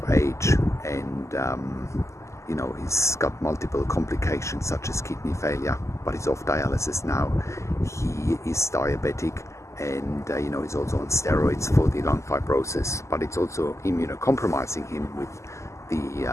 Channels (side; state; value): right; late; 0.14 ms